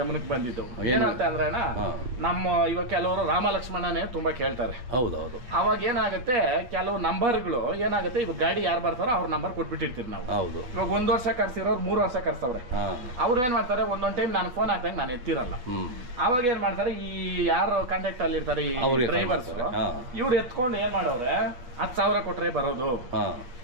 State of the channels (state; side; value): late; left; 8.3 ms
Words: ಬಂದಿದ್ದು. ಏನಂತ ಅಂದ್ರೆ ಅಣ್ಣ, ನಮ್ಮ ಇವಾಗ ಕೆಲವರು ರಾಮ ಲಕ್ಷ್ಮಣನೇ ತುಂಬಾ ಕೇಳ್ತಾರೆ. ಹೌದೌದು. ಅವಾಗ ಏನಾಗುತ್ತೆ, ಕೆಲವು ನಂಬರ್ಗಳು ಏನಾಗುತ್ತೆ, ಇವಾಗ ಗಾಡಿ ಯಾರು ಬರ್ತಾರೋ ಅವ್ರ ನಂಬರ್ ಕೊಟ್ಬಿಟ್ಟಿರ್ತೀವಿ ನಾವು. ಇವಾಗ 1 ವರ್ಷ ಕರ್ಸಿರೋರು 3 ವರ್ಷ ಕರ್ಸವ್ರೆ. ಅವ್ರು ಏನ್ ಮಾಡ್ತಾರೆ, ಒಂದೊಂದ್ ಟೈಮ್ ನಾನು ಫೋನ್ ಹಾಕ್ದಾಗ ನಾನು ಎತ್ತಿರಲ್ಲ. ಅವಾಗ ಏನ್ ಮಾಡ್ತಾರೆ, ಈ ಯಾರು ಕಾಂಟ್ಯಾಕ್ಟ್ ಅಲ್ಲಿ ಇರ್ತಾರೆ ಈ ಡ್ರೈವರ್ಸ್, ಇವ್ರು ಎತ್ಕೊಂಡು ಏನ್ ಮಾಡವ್ರೆ, 10,000 ಕೊಟ್ರೆ ಬರೋದು,